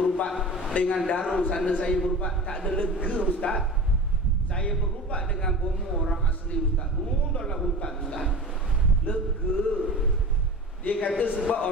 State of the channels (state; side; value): normal; both; correlation 0.33